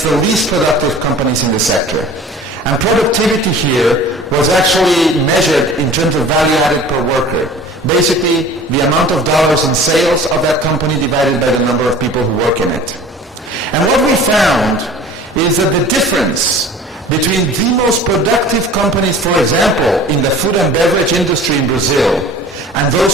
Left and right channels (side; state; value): both; normal; correlation 0.43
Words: the least productive companies in the sector. And productivity here was actually measured in terms of value added per worker. Basically, the amount of dollars in sales of that company divided by the number of people who work in it. And what we found is that the difference between the most productive companies, for example, in the food and beverage industry in Brazil, and